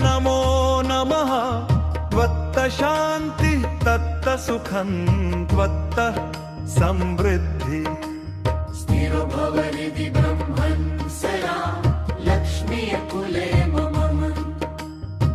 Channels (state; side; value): identical; both; correlation 1.00